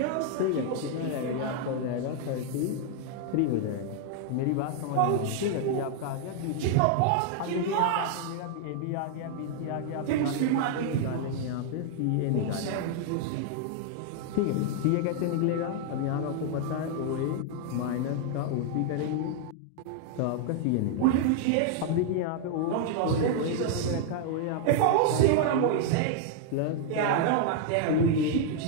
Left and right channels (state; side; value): different; both; correlation 0.00